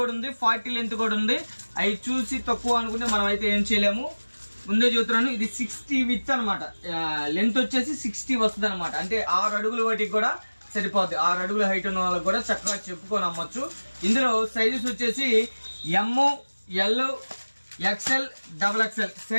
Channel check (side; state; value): both; inverted; correlation -1.00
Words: ఉంది, 40 లెంత్ కూడా ఉంది. అవి చూసి తక్కువ అనుకుంటే మనం అయితే ఏం చేయలేము. ముందే చూస్తున్నాను. ఇది 60 విత్ అనమాట. లెంత్ వచ్చేసి 60 వస్తుంది అనమాట. అంటే 6 అడుగుల వాటికి కూడా సరిపోద్ది. 6 అడుగుల హైట్ ఉన్న వాళ్ళకి కూడా చక్కగా చెప్పుకొని అమ్మొచ్చు. ఇందులో సైజెస్ వచ్చేసి M, L, XL, XXL